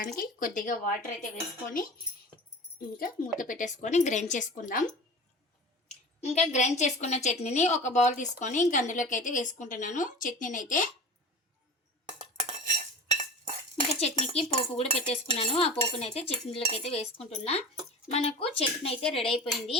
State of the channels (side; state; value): both; normal; correlation 0.34